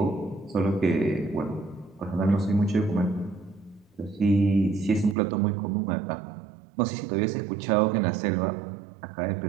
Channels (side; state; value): left; drops out; at 5.2 s